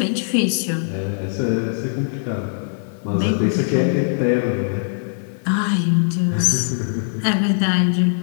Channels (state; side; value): silent; right; 56 dB below the other